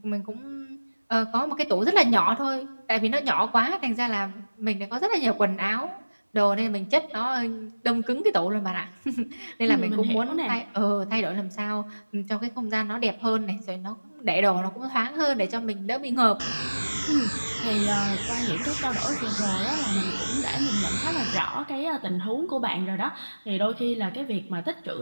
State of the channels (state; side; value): inverted; both; correlation -1.00